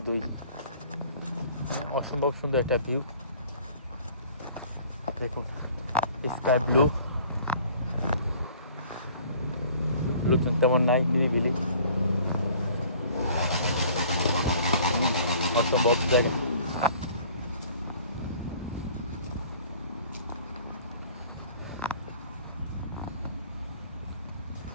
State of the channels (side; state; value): both; inverted; correlation -0.51